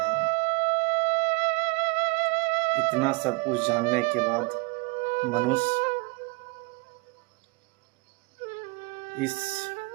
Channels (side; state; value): left; quieter; 27.4 dB